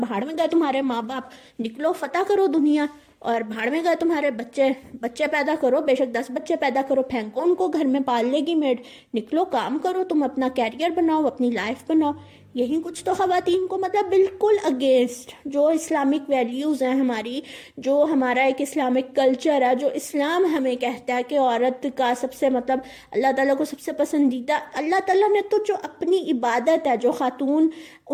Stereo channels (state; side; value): identical; both; correlation 1.00